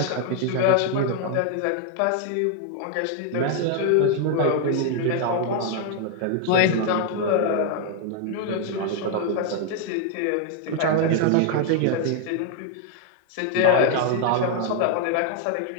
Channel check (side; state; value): both; different; correlation 0.00